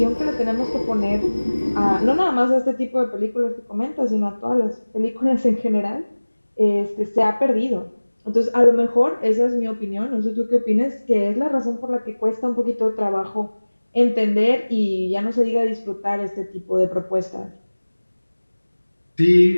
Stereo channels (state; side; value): inverted; both; correlation -1.00